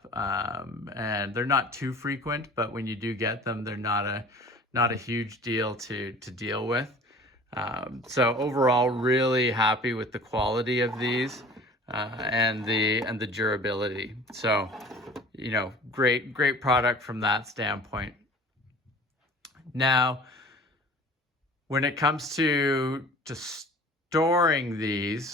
and they're not too frequent, but when you do get them, they're not a huge deal to deal with. So overall, really happy with the quality of these and the durability. So, great product from that standpoint. Now, when it comes to storing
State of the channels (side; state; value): both; normal; correlation 0.45